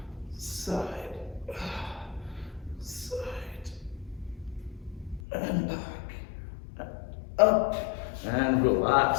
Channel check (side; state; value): right; drops out; at 5.2 s